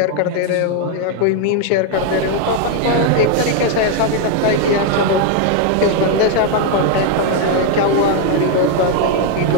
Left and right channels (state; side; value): different; both; correlation 0.00